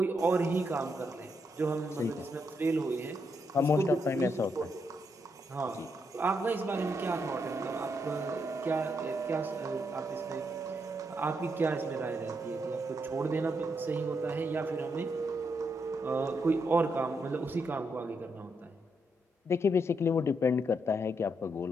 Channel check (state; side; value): normal; both; correlation 0.79